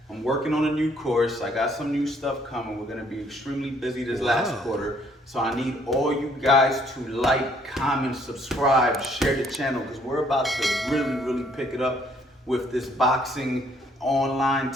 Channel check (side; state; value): both; normal; correlation 0.65